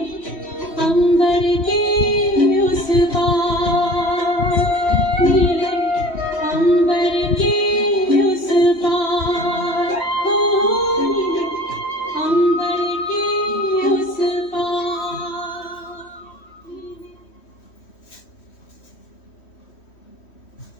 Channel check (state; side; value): late; right; 3.1 ms